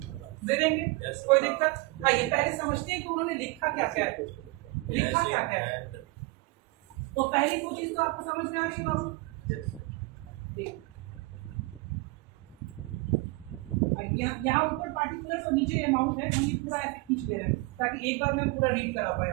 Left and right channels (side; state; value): left; quieter; 23.3 dB